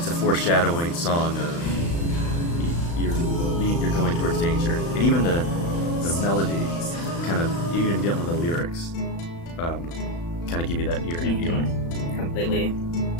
a foreshadowing song of you're going towards danger, and even the melody kind of even get one of the lyrics kind of give you that eerie feeling. Completely.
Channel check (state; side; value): late; right; 35 ms